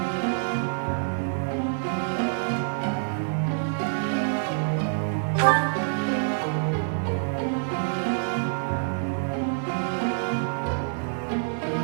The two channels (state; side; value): silent; left; 61 dB below the other